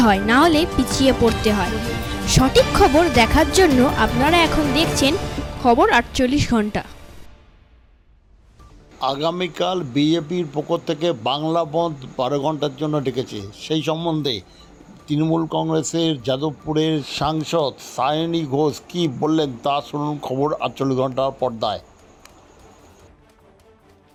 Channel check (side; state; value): both; identical; correlation 1.00